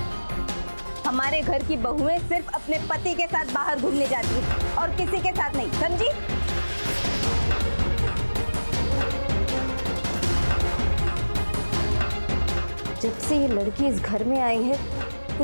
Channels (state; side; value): inverted; both; correlation -1.00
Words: हमारे घर की बहुएं सिर्फ अपने पति के साथ बाहर घूमने जाती हैं और किसी के साथ नहीं, समझी? जब से ये लड़की इस घर में आई है